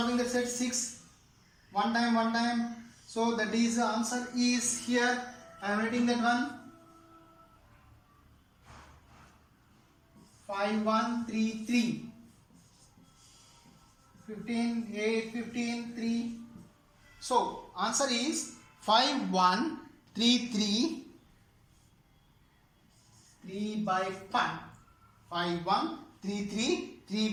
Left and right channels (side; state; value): both; identical; correlation 1.00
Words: that set 6. 1 time. So that is the answer is here. I am writing that one. 5133. 15 8 15 3. So answer is 5133 3 by 5. 5133 3